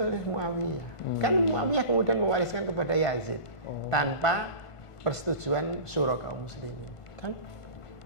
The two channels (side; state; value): right; late; 1.5 ms